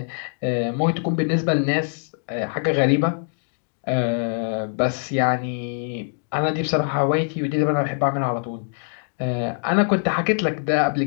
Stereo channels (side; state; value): right; silent; 63 dB below the other